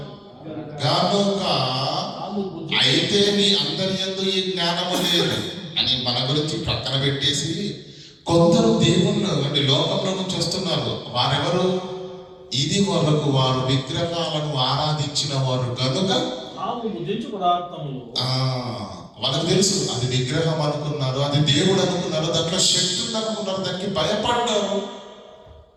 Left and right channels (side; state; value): both; identical; correlation 1.00